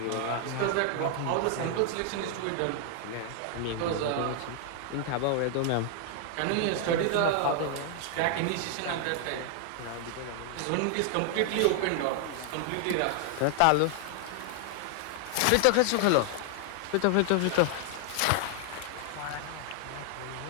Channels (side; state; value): both; different; correlation 0.00